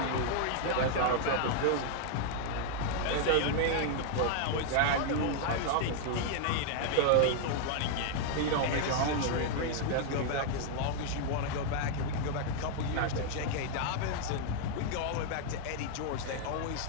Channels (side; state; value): both; different; correlation 0.00